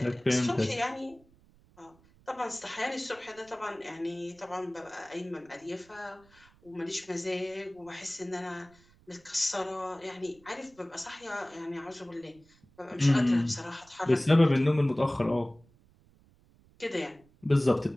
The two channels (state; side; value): noise; right; rumble, 29 dB below the sound